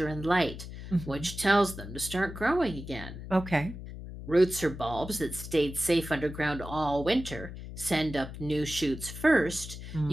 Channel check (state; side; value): noise; left; hum, 11 dB below the sound